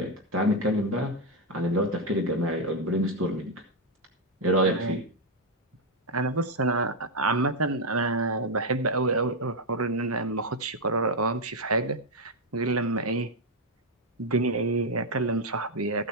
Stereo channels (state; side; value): normal; both; correlation 0.02